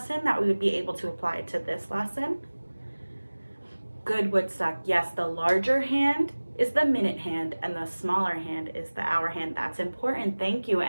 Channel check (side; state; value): both; inverted; correlation -1.00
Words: that we would be able to apply to this lesson? Good, Woodstock. Yes, the larger hand is the minute hand and the smaller hand is the hour hand. That's important. Thank you.